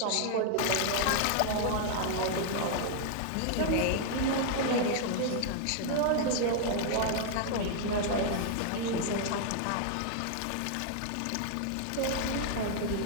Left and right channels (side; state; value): both; different; correlation 0.00